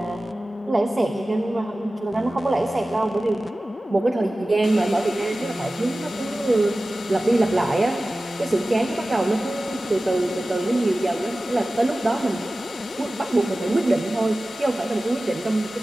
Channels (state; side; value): normal; both; correlation 0.96